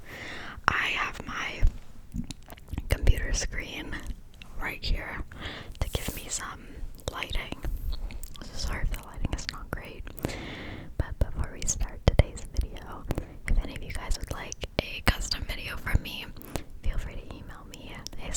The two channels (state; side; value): identical; both; correlation 1.00